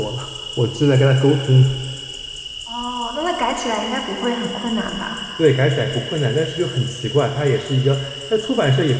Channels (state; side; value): identical; both; correlation 1.00